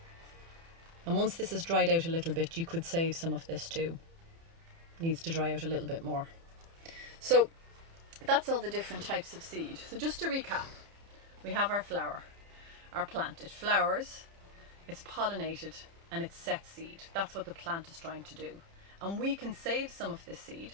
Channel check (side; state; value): left; late; 30 ms